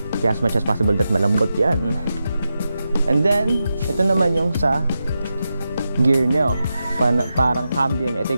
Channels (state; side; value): inverted; both; correlation -0.89